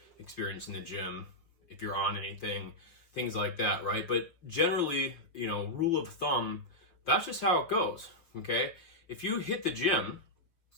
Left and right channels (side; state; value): right; late; 5.9 ms